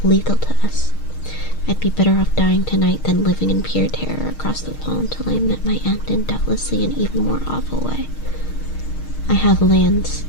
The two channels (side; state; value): right; late; 6.5 ms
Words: lethal to us. I'd be better off dying tonight than living in pure terror across the wall until I met my end in doubtlessly an even more awful way. I have lands,